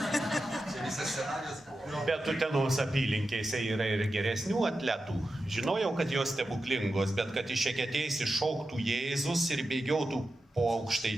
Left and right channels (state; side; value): normal; both; correlation 0.91